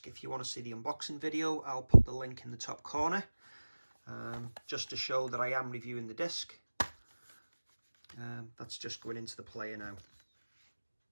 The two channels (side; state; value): both; inverted; correlation -1.00